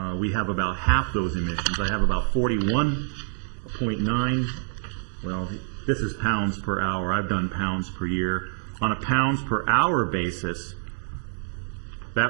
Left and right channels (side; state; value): left; silent; digital silence